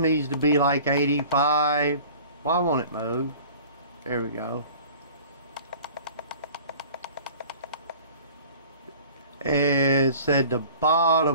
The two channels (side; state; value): both; inverted; correlation -0.46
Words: needs to be like 85. Why won't it move? There we go. It said the